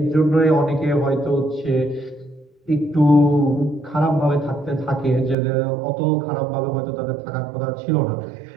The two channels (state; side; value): drops out; left; at 5.4 s